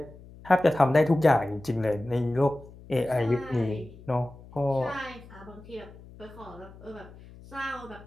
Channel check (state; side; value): noise; left; hum, 20 dB below the sound